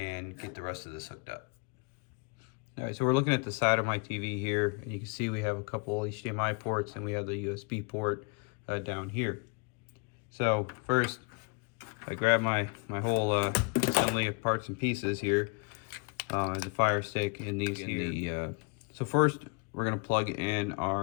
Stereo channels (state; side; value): quieter; right; 34.8 dB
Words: get the rest of this hooked up. All right, so we're looking at the side of my TV here, and you can see we have a couple HDMI ports and we have the USB port down here. So first, I grab my whole assembly of parts and pieces here, the Fire Stick and these here. So first, we're gonna plug in